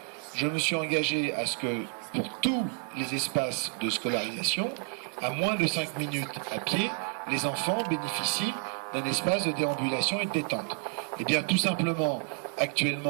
je me suis engagé à ce que pour tous les espaces de scolarisation, à moins de 5 minutes à pied, les enfants bénéficient d'un espace de déambulation et de détente. Et bien tout simplement,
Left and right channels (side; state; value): left; quieter; 38.4 dB